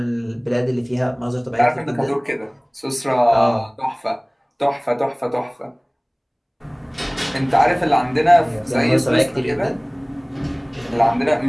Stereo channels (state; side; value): identical; both; correlation 1.00